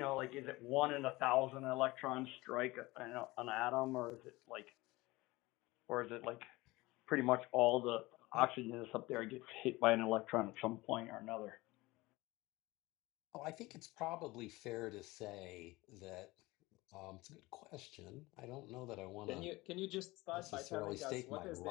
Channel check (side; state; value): right; quieter; 20.9 dB